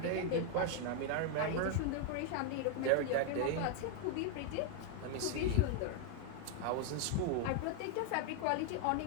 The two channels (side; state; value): both; different; correlation 0.01